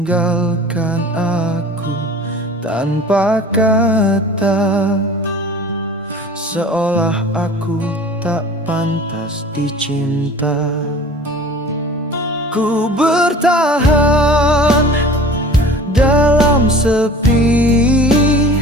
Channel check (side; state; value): both; normal; correlation 0.42